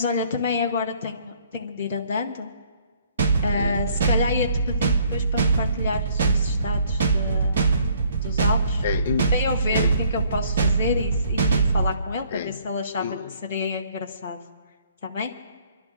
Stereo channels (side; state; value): both; inverted; correlation -0.62